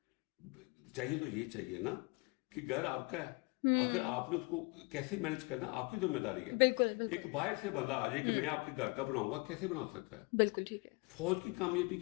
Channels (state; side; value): quieter; right; 27.7 dB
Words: چاہیے تو یہ چاہیے نا کہ گھر آپ کا ہے، اگر آپ نے اس کو کیسے مینج کرنا آپ کی ذمہ داری ہے. بالکل. ایک باہر سے بندہ آ جائے کہ میں آپ کے گھر کا بناؤں گا، کیسے بنا سکتا ہے؟ بالکل ٹھیک ہے. فوج کی کامیابی